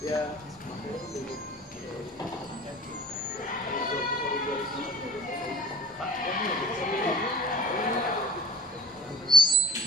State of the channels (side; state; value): both; normal; correlation 0.42